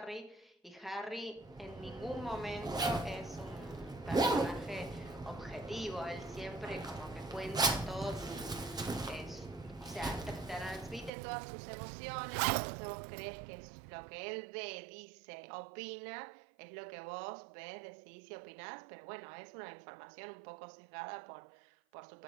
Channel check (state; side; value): drops out; left; at 11.1 s